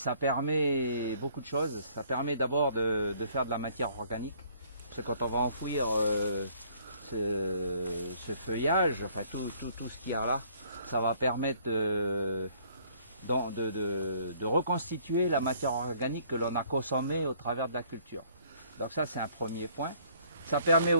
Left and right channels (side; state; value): both; inverted; correlation -0.60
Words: permet beaucoup de choses. Ça permet d'abord de faire de la matière organique. Parce que quand on va enfouir ce feuillage, enfin tout ce qu'il y a là, ça va permettre de reconstituer la matière organique que l'on a consommée au travers de la culture. Donc ça, c'est un premier point. Ça permet